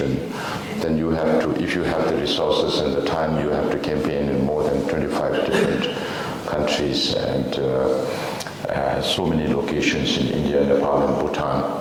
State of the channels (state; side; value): identical; both; correlation 1.00